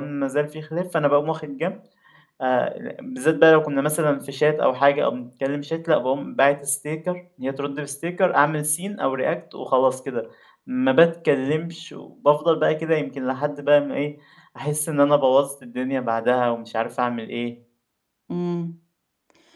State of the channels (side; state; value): both; identical; correlation 1.00